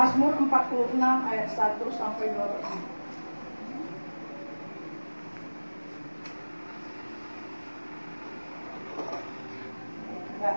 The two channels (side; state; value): both; inverted; correlation -1.00